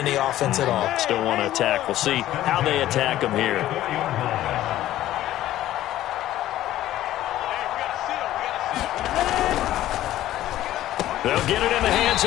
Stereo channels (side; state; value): right; quieter; 13.8 dB